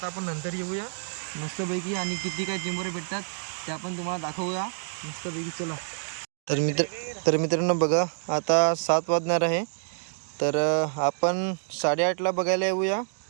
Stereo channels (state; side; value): silent; left; digital silence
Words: आपण नंतर येऊया मस्तपैकी आणि किती काय चिंबोरे भेटतात ते आपण तुम्हाला दाखवूया मस्तपैकी. चला तर मित्रांनो बघा आता 7 वाजणार आहे. तर आपण 8:30ला बघायला येऊया